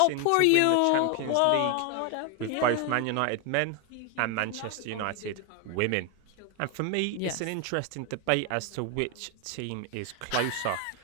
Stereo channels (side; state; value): both; different; correlation 0.01